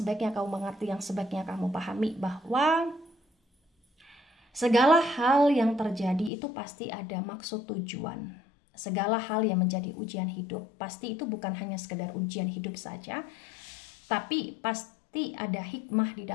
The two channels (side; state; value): right; drops out; at 6.3 s